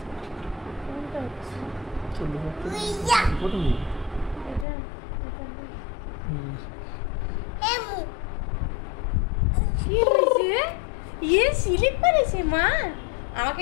কি হয়েছে? ইয়ে স্লিপ করেছে মা। আমাকে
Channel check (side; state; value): right; drops out; at 4.7 s